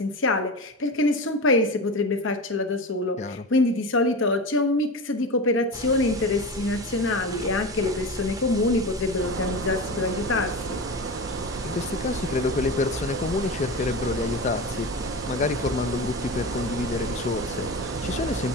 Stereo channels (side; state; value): both; normal; correlation 0.26